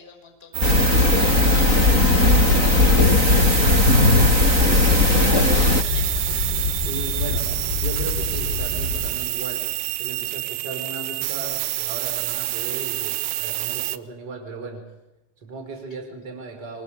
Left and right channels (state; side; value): late; left; 3.9 ms